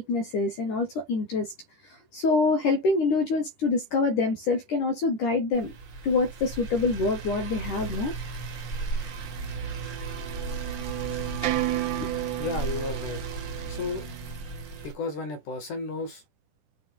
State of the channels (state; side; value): late; right; 10 ms